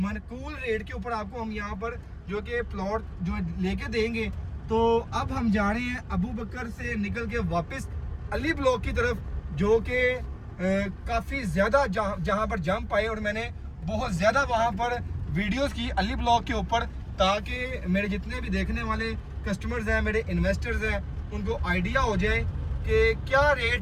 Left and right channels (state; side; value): identical; both; correlation 1.00